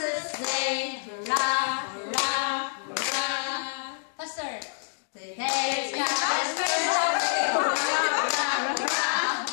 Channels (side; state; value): right; silent; digital silence